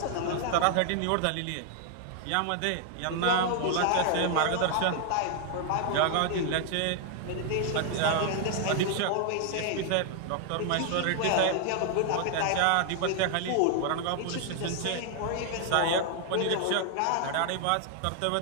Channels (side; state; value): both; different; correlation 0.00